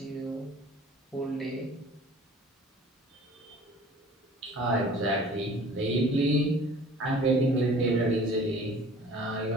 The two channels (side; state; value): both; normal; correlation 0.47